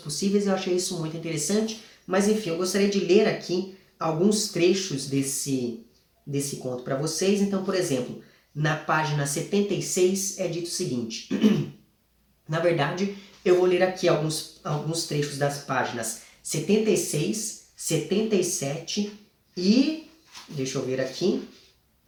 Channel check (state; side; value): identical; both; correlation 1.00